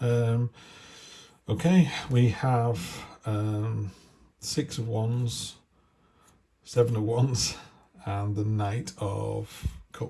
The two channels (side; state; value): both; identical; correlation 1.00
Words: Okay, we have 6 of Wands, 7 of Wands, and the Knight of